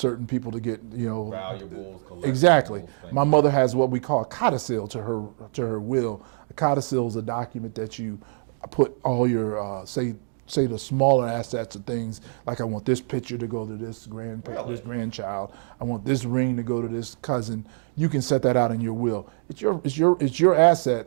people to get, valuables, collectibles. Exactly. My mother has what we call a codicil to her will. A codicil is a document that you put all your say the smaller assets of things, like I want this picture to go to this grandchild. I want this ring to go to this cousin. You can set that out in your will. It's your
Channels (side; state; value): left; silent; digital silence